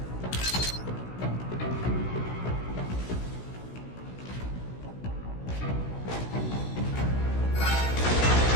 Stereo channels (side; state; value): right; late; 16 ms